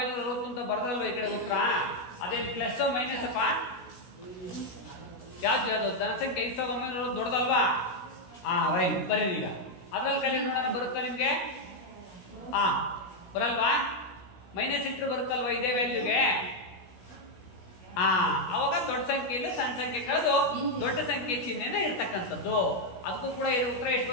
ಅಂತ ಬರ್ದಲ್ವ ಈ ಕಡೆ ಉತ್ತರ, ಅದೇನು ಪ್ಲಸ್ ಮೈನಸ್ ಅಪ್ಪ? ಯಾವ್ದು ಜನಸಂಖ್ಯೆ 5960 ದೊಡ್ಡದಲ್ವಾ? ರೈಟ್, ಬರ್ರಿ ಈಗ ಅದ್ರಲ್ಲಿ ಕಲಿ ನೋಡೋಣ, ಬರುತ್ತಾ ನಿಮ್ಗೆ? ಬರಲ್ವಾ? ಮೈನಸ್ ಇಟ್ಟರು ಬರುತ್ತಲ್ವಾ ಇದೇ ವ್ಯಾಲ್ಯೂಗೆ? ಅವಾಗ ದೊಡ್ಡ ಸಂಖ್ಯೆಯಿಂದ ಸಣ್ಣ ಸಂಖ್ಯೆ ಕಳೆದು ದೊಡ್ಡ ಸಂಖ್ಯೆ ಚಿಹ್ನೆನೇ ಇರ್ತಕ್ಕಂಥದ್ದು. ಅದಕ್ಕೂ ಕೂಡ ಇದು ಉತ್ತರ ಎಷ್ಟು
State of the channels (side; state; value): right; late; 16 ms